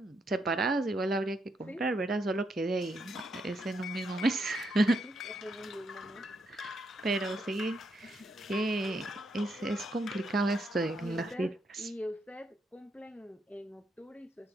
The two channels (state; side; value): normal; both; correlation 0.78